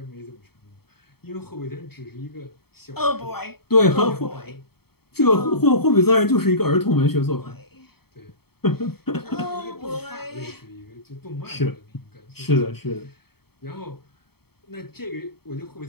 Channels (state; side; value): late; right; 0.96 ms